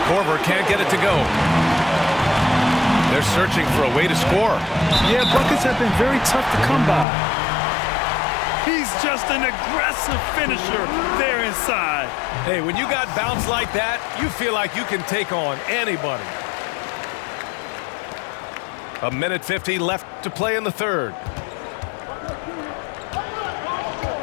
Korver can't get it to go. They're searching for a way to score. Yeah, buckets have been very tough to come by. He's just an aggressive finisher there inside. Hey, when you got bounce like that, you feel like you can take on anybody. 1:50 left to play in the third.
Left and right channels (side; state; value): right; drops out; at 7.1 s